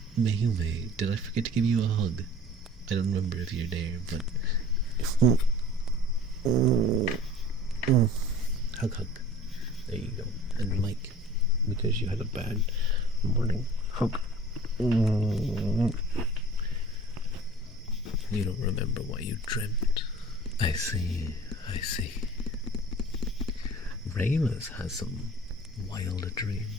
Mayume, did I forget to give you a hug? I don't remember if you're there, but. Hug, hug. There you go. And Mike, because you had a bad morning, hug. You don't remember what you dreamt. I see, I see. Regulus has some wild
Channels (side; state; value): both; normal; correlation 0.45